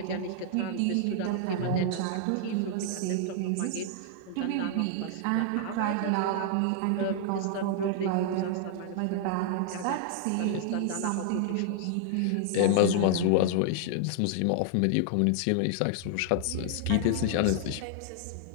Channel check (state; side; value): different; both; correlation -0.01